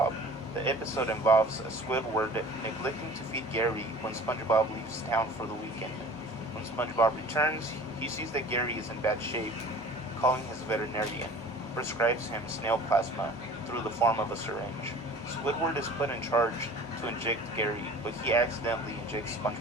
The episode involves Squidward neglecting to feed Gary when SpongeBob leaves town for the weekend. When SpongeBob returns, he sees that Gary is in bad shape. Calling his veterinarian, prescribes him snail plasma through the form of a syringe. Squidward is put in charge to inject Gary, but he accidentally injects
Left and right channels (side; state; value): both; normal; correlation 0.44